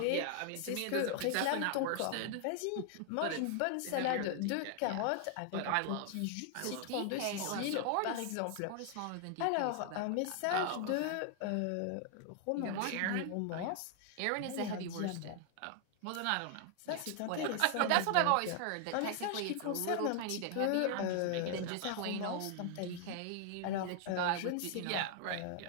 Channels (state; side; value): different; both; correlation 0.00